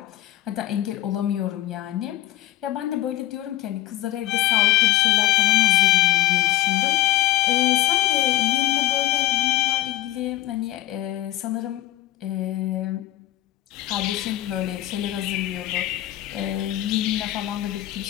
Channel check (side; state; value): right; quieter; 15.2 dB